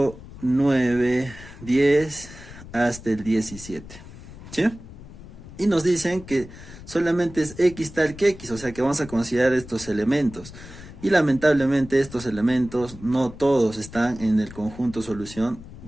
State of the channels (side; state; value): left; noise; rumble, 16 dB below the sound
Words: 9, 10 hasta el 17. ¿Sí? Y nos dicen que solamente es X tal que X, o sea que vamos a considerar estos elementos. Y lamentablemente estos elementos no todos están en el conjunto solución